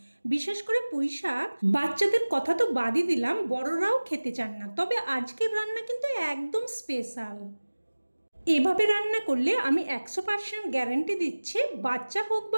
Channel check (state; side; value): inverted; both; correlation -1.00